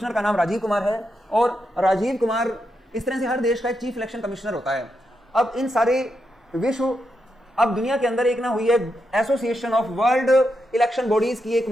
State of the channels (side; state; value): both; normal; correlation 0.84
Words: का नाम राजीव कुमार है। और राजीव कुमार, इस तरह से हर देश का एक चीफ इलेक्शन कमिश्नर होता है। अब इन सारे विश्व, अब दुनिया के अंदर एक ना हुई है association of world election bodies की एक